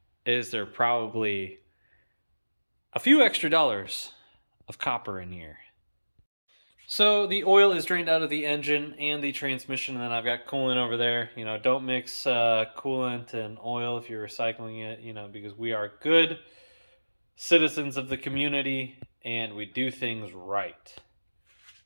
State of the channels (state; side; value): inverted; both; correlation -1.00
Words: is there probably a few extra dollars of copper in here. So the oil is drained out of the engine and the transmission, and then I've got coolant over there. You know, don't mix coolant and oil if you're recycling it, you know, because we are good citizens of the community and we do things right.